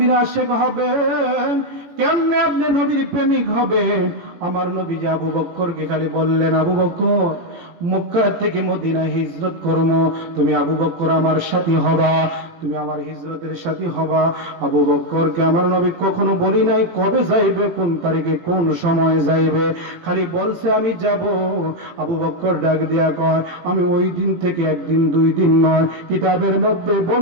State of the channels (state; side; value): late; left; 18 ms